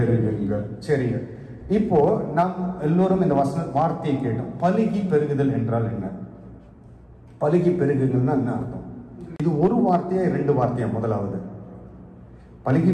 சரிங்க. இப்போ நாம் எல்லோரும் இந்த வார்த்தையை கேட்டோம். பலுகி பெருகுதல் என்றால் என்ன? பலுகி பெருகுங்கள்னா என்ன அர்த்தம்? இது ஒரு வார்த்தையா 2 வார்த்தையா? முதலாவது பலுகி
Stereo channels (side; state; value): both; identical; correlation 1.00